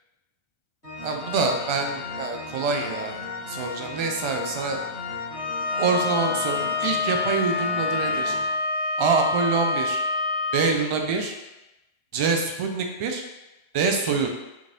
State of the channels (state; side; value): late; right; 1.3 ms